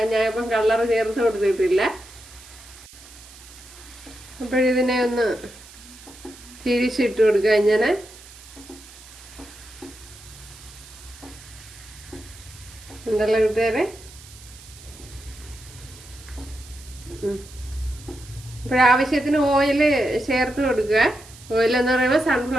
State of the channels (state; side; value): noise; right; hiss, 20 dB below the sound